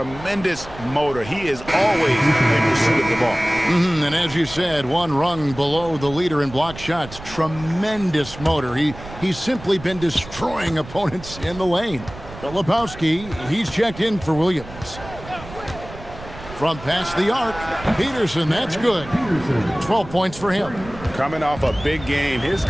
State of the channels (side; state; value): right; noise; rumble, 15 dB below the sound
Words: motor. He is always in pursuit of the ball. And as you said, one rung below the leader in block shots. Tremendous motor. He's simply been destroying opponents in the lane. Filipowski, he's checked in for Williams. From past the arc, Peterson, that's good. 12 points for him. Coming off a big game, his